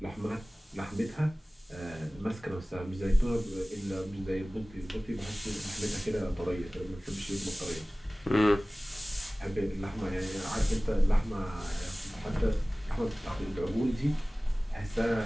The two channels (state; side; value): normal; both; correlation 0.98